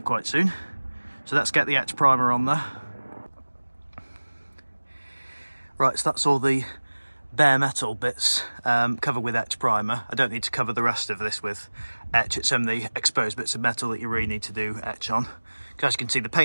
quite soon. So let's get the etch primer on there. Right, so that's all the bare metal bits covered with etch primer. I don't need to cover the rest of this with etch. It's only the exposed bits of metal that you really need to do etch on. As you can see, the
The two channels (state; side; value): inverted; both; correlation -1.00